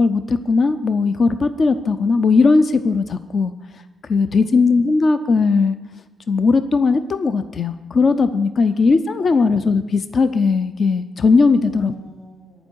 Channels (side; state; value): right; quieter; 3.9 dB